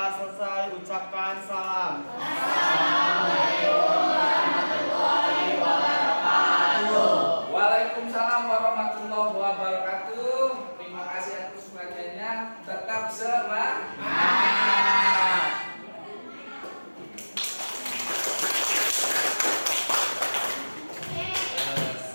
selesai, ucapkan salam.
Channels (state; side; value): inverted; both; correlation -1.00